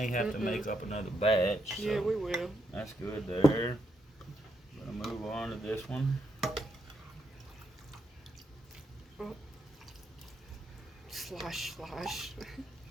have to make up another batch. So yeah, we will. That's good there. I'm going to move on to this one. Oh. Slosh.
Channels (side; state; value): both; normal; correlation 0.80